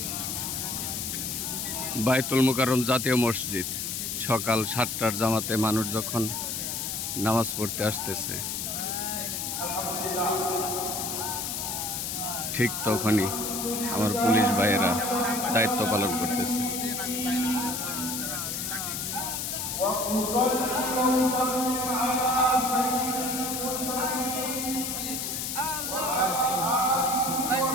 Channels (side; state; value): left; noise; hiss, 3 dB below the sound